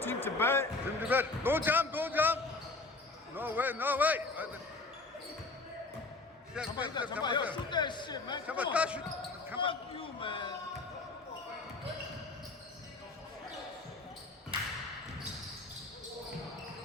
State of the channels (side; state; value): right; quieter; 3.4 dB